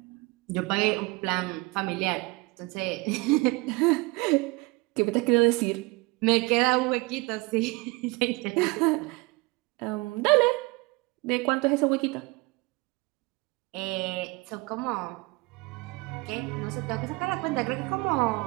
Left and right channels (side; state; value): left; quieter; 24.8 dB